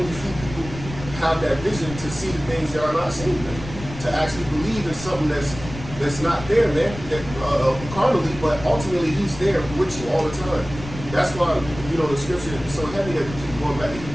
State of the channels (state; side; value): noise; left; rumble, 12 dB below the sound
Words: few people have that vision to see the things that are not seen, man. To actually believe in something that's not there, man. That carnally, but ultimately He's there with you all the time. That's why, the scripture is so heavy that we keep going back to